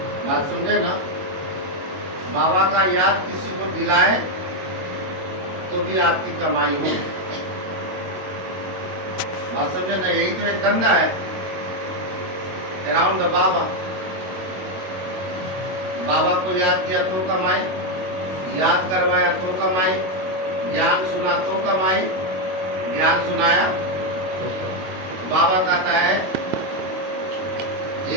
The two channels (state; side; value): late; left; 22 ms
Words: बात समझे ना? बाबा का याद किसी को दिलाए तो भी आपकी कमाई हो। बात समझे ना? यही तो एक धंधा है अराउंड द बाबा। बाबा को याद किया तो कमाई, याद करवाया तो कमाई, ज्ञान सुना तो कमाई, ज्ञान सुनाया। बाबा कहता है